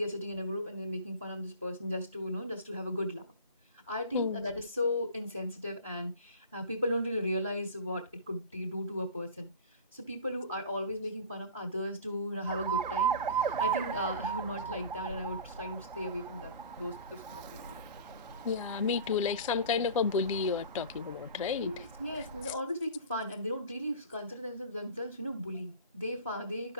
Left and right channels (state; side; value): inverted; both; correlation -0.37